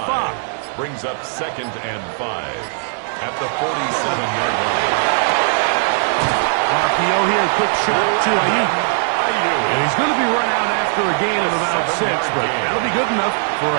Brings up 2nd and 5 at the 47-yard line. RPO here, quick shot to Ayuk. And he's going to be run out after a gain of about 6, but that'll be good enough for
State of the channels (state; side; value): silent; left; 67 dB below the other